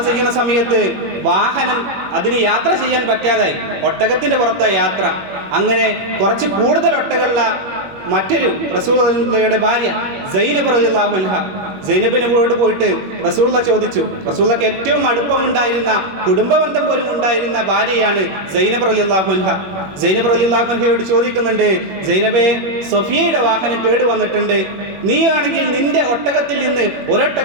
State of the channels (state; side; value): late; left; 21 ms